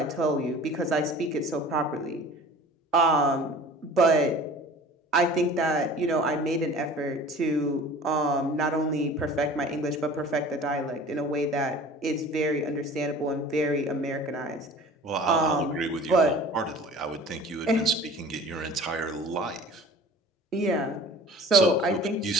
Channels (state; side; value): normal; both; correlation 0.44